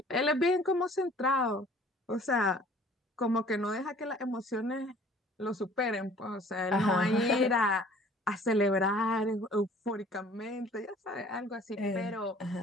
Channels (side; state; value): both; normal; correlation 0.52